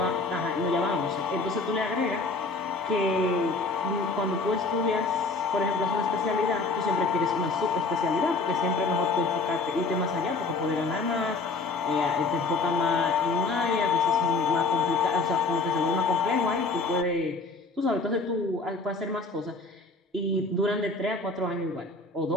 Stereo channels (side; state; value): right; quieter; 3.7 dB